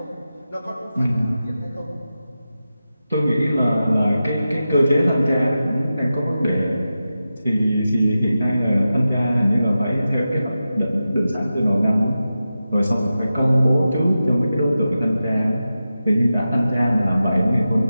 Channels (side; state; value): both; inverted; correlation -0.92